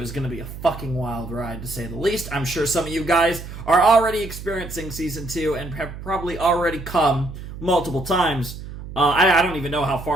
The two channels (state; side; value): noise; right; hum, 11 dB below the sound